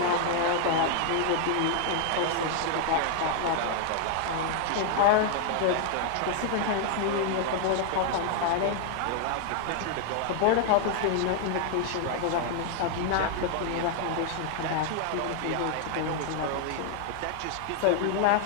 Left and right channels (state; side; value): different; both; correlation 0.00